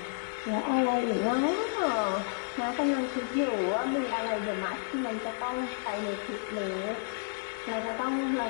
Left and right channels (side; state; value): right; silent; 57 dB below the other